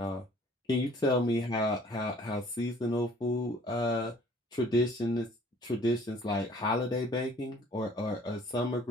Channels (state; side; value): normal; both; correlation 0.55